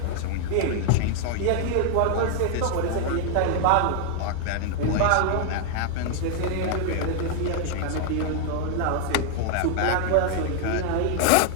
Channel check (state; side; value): different; both; correlation -0.01